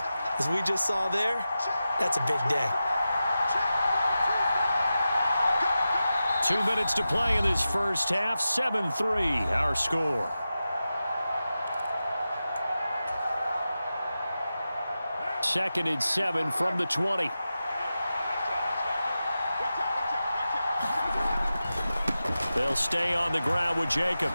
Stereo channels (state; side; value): inverted; both; correlation -0.93